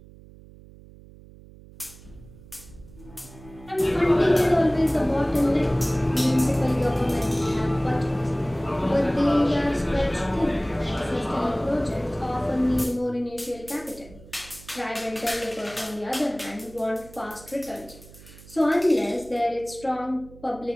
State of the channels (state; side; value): noise; right; hum, 21 dB below the sound